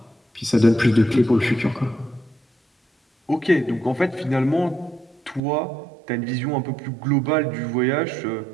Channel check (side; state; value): left; drops out; at 5.4 s